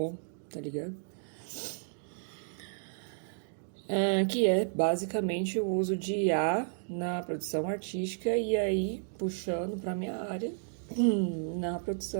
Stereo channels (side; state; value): left; silent; digital silence